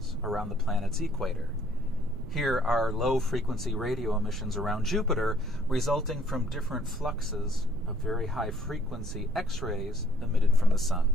around the planet's equator. Here are low-frequency radio emissions around Jupiter resulting from different fluxes of very high-frequency X-rays emitted from the sun.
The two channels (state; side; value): noise; right; rumble, 10 dB below the sound